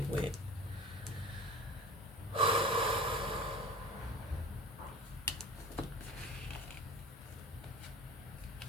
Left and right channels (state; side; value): normal; both; correlation 0.38